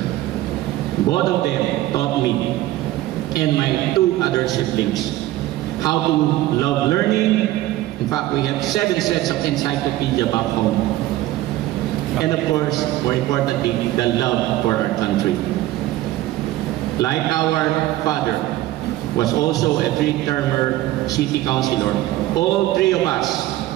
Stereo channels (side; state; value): left; quieter; 15.7 dB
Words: Both of them taught me and my 2 other siblings how to love learning. In fact, we have 7 sets of encyclopedia back home. And of course, more importantly, the love for our country. Like our father was also a 3-termer city councilor, all 3 of us